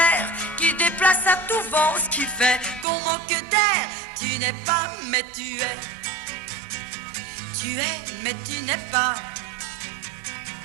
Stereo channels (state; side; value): drops out; left; at 2.9 s